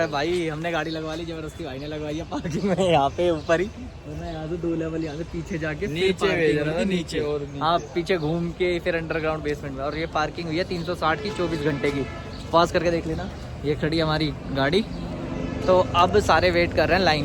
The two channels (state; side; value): identical; both; correlation 1.00